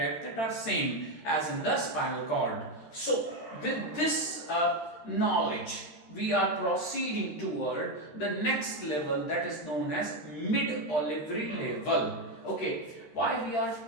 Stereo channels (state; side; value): late; right; 13 ms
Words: that are same as in the spinal cord. So with this knowledge, we are proceeding toward the next level, that is known as mid-olivary level. Okay, why we are